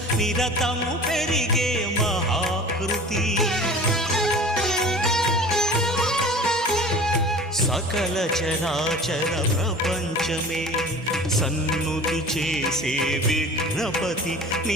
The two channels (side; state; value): both; normal; correlation 0.41